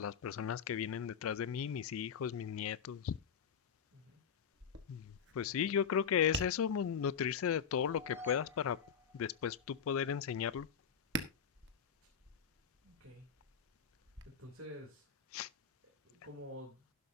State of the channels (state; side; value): quieter; right; 7.1 dB